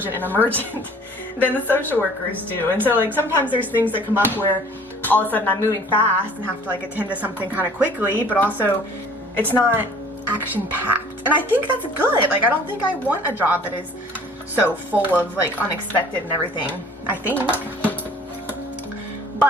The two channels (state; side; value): normal; both; correlation 0.51